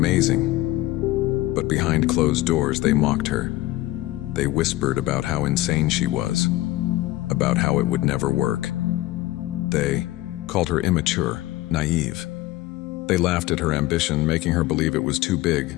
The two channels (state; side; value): quieter; right; 17.2 dB